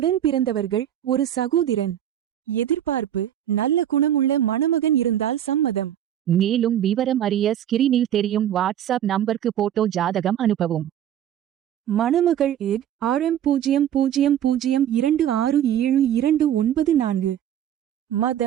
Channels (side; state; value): left; quieter; 10.7 dB